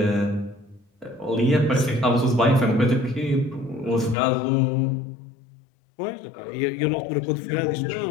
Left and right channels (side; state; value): right; drops out; at 4.2 s